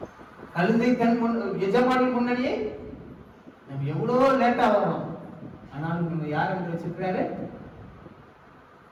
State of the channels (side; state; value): both; identical; correlation 1.00